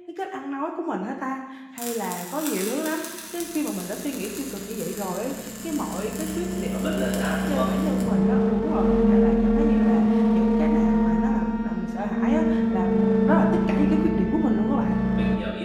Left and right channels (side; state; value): both; identical; correlation 1.00